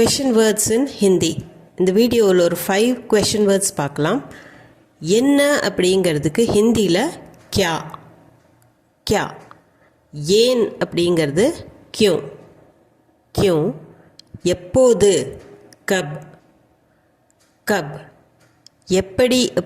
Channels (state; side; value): identical; both; correlation 1.00